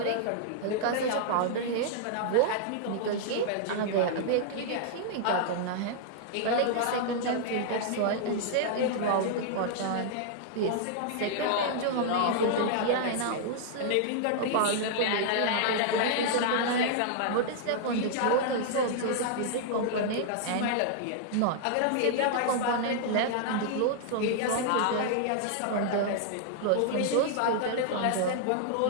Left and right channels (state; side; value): different; both; correlation -0.01